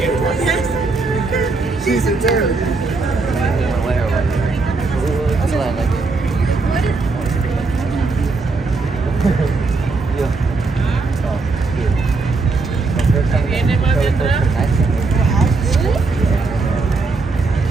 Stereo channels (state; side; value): quieter; left; 3.9 dB